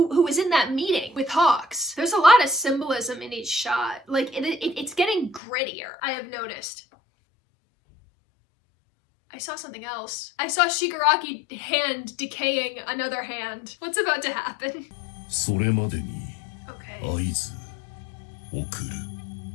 was in that meeting with Hawks. There's a lot of symbolism in each shot. Like it's getting grittier, I have noticed. I saw something else. I saw Shigaraki hand decaying another hand. What's about to happen? Okay.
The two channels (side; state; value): right; drops out; at 5.4 s